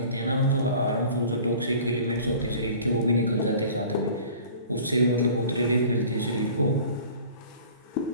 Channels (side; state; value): both; inverted; correlation -0.45